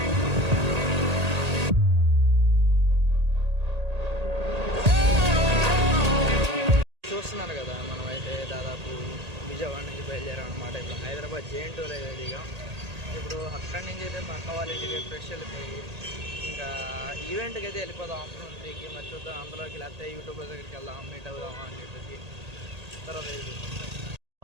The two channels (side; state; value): left; late; 1.8 ms